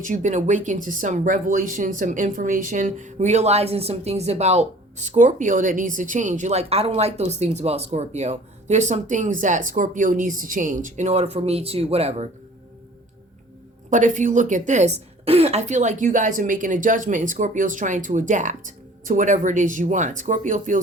you've been awakened to some revelation, some information, realizing some things about Scorpio that needs to change. You're like, I don't like those things about Scorpio. There's some things that Scorpio needs to change in order for me to whatever. But if you look at this, I feel like you guys are making a judgment and Scorpio's trying to adapt to whatever it is you want. Scorpio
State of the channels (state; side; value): normal; both; correlation 0.49